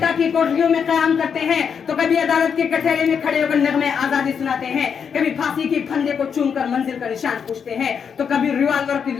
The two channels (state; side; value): quieter; right; 6.9 dB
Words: کی کوٹریوں میں قیام کرتے ہیں تو کبھی عدالت کے کٹہرے میں کھڑے ہو کر نغمے آزادی سناتے ہیں، کبھی پھانسی کے پھندے کو چوم کر منزل کا نشان پوچھتے ہیں تو کبھی ریوالور کی